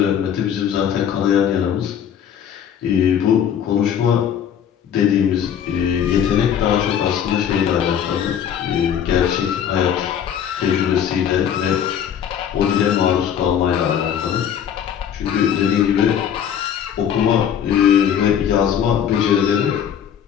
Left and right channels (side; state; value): right; quieter; 8.9 dB